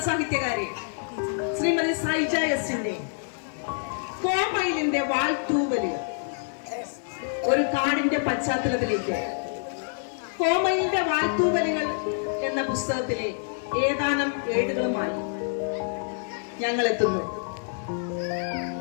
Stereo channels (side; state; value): right; silent; digital silence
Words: ശ്രീമതി സൈജ എസിന്റെ കോമയിലിന്റെ വാൾത്തൂവലുകൾ ഒരു കാടിന്റെ പശ്ചാത്തലത്തിലേക്ക് കോമയിലിന്റെ വാൾത്തൂവലുകൾ എന്ന പുസ്തകത്തിലെ ഏതാനും ഏടുകളുമായി ഞങ്ങൾ എത്തുന്നു.